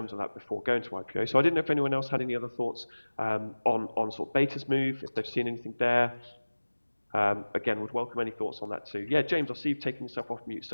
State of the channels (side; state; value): both; inverted; correlation -1.00